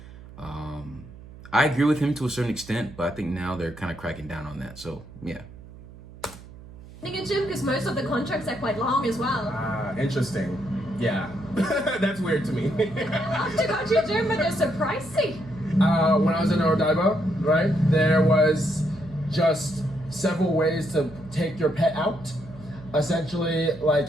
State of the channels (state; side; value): noise; right; hum, 18 dB below the sound